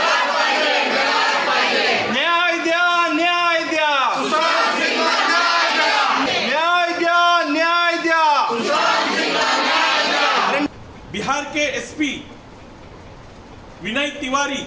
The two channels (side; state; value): both; identical; correlation 1.00